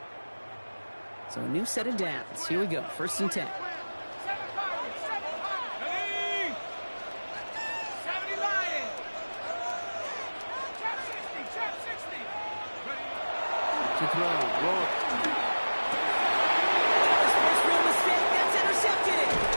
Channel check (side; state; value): both; inverted; correlation -1.00